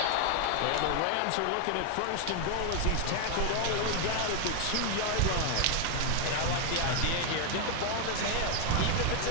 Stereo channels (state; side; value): different; both; correlation 0.00